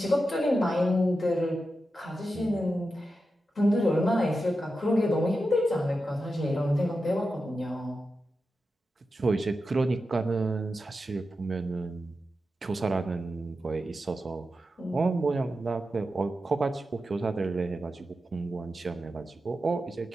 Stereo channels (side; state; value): both; normal; correlation 0.90